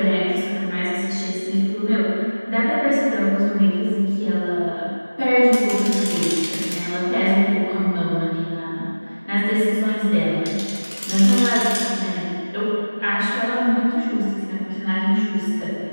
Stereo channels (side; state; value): both; inverted; correlation -1.00